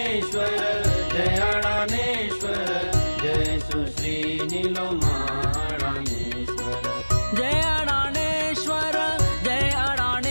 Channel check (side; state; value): both; inverted; correlation -1.00